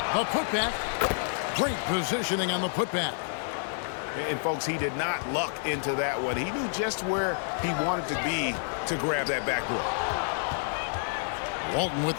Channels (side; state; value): right; silent; digital silence